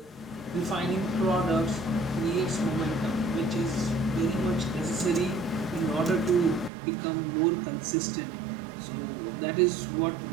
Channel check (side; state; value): left; drops out; at 6.7 s